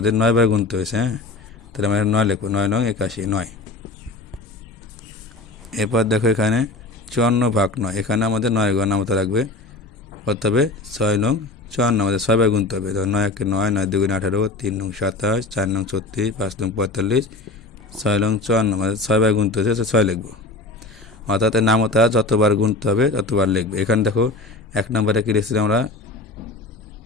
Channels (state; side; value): quieter; right; 3.2 dB